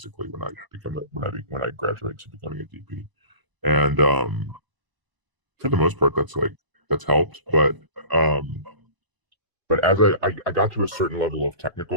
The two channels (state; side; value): late; left; 1.0 ms